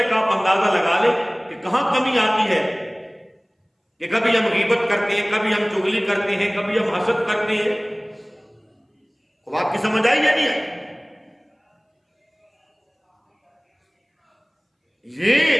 آپ اندازہ لگا لیں کہ کہاں کمی آتی ہے، کہ کبھی ہم غیبت کرتے ہیں، کبھی ہم چغلی کرتے ہیں، کبھی ہم حسد کرتے ہیں۔ اب آپ کی سمجھ آئی یا نہیں آئی؟ یہ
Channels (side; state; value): both; identical; correlation 1.00